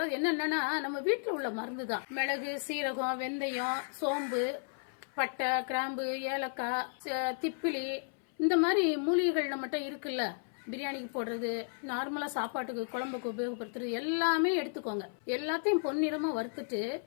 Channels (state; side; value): silent; right; 55 dB below the other